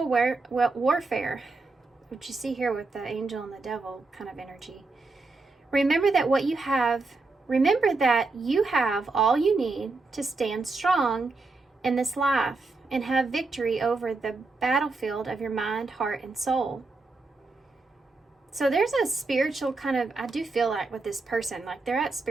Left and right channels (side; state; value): left; quieter; 3.6 dB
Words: warfare, which you see here with the angel and the devil kind of energy. Remember that you have all you need to stand strong in this life and have victory over the battlefield of your mind, heart, and soul. So there's a spiritual kind of, I do feel like with this person, like they're at